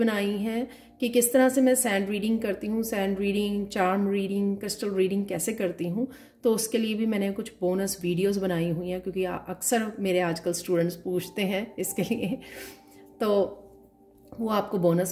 हैं कि किस तरह से मैं सैंड रीडिंग करती हूँ, sand reading, charm reading, crystal reading कैसे करती हूँ, तो उसके लिए भी मैंने कुछ बोनस वीडियोस बनाई हुई हैं, क्योंकि अक्सर मेरे आजकल स्टूडेंट्स पूछते हैं इसके लिए, तो वो आपको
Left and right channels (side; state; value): both; identical; correlation 1.00